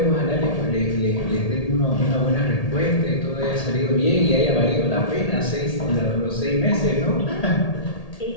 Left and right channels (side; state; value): right; late; 1.8 ms